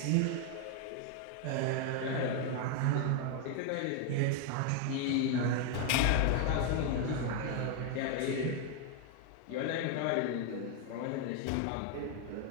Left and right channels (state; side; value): different; both; correlation 0.01